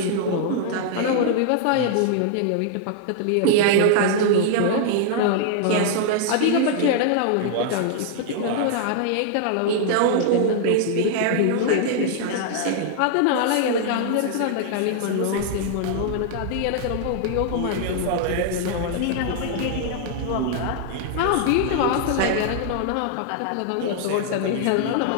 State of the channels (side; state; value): both; different; correlation -0.01